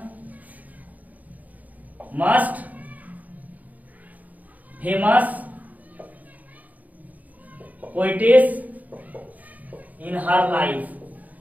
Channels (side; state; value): left; late; 0.076 ms